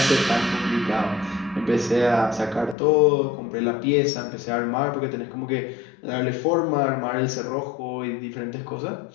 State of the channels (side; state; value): right; drops out; at 2.8 s